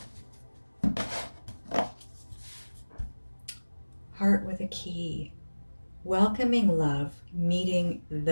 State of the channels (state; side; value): inverted; both; correlation -1.00